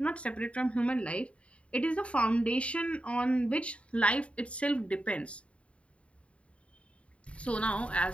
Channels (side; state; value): right; late; 0.062 ms